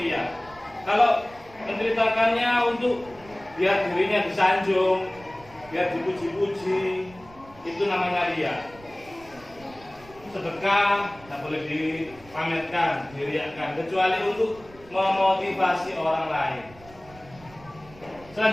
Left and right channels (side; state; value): right; noise; rumble, 23 dB below the sound